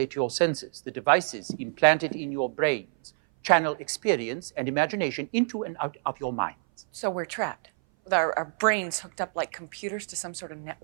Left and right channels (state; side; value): silent; left; 58 dB below the other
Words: your senses. The devices implanted in your brains channel experience and imagination into and out of your minds. So we're trapped, with our brains hooked up like computers to some sort of